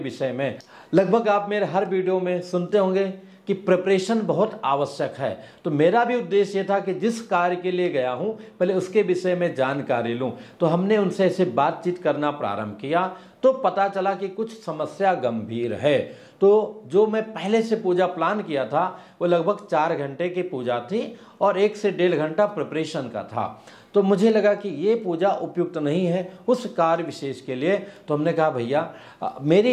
में। लगभग आप मेरे हर वीडियो में सुनते होंगे कि प्रिपरेशन बहुत आवश्यक है। तो मेरा भी उद्देश्य था कि जिस कार्य के लिए गया हूं पहले उसके विषय में जानकारी लूं। तो हमने उनसे ऐसे बातचीत करना प्रारंभ किया तो पता चला कि कुछ समस्या गंभीर है। तो जो मैं पहले से पूजा प्लान किया था वो लगभग 4 घंटे की पूजा थी और 1 से 1.5 घंटा प्रिपरेशन का था। तो मुझे लगा कि ये पूजा उपयुक्त नहीं है उस कार्य विशेष के लिए। तो हमने कहा भैया मेरी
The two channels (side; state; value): both; identical; correlation 1.00